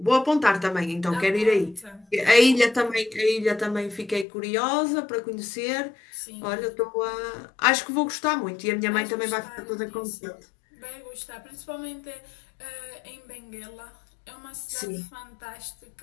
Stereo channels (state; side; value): drops out; right; at 4.2 s